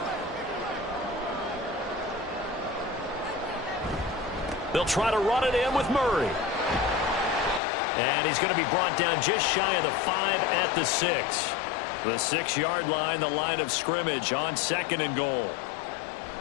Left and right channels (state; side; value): drops out; right; at 7.6 s